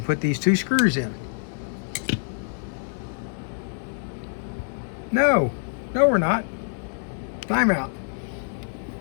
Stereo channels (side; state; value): right; silent; digital silence